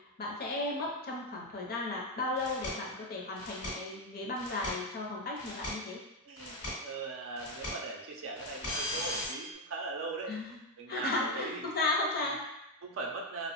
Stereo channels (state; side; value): normal; both; correlation 0.06